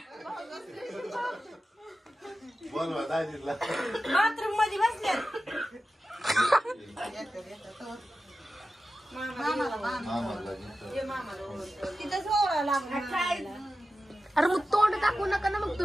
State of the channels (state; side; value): normal; both; correlation 0.93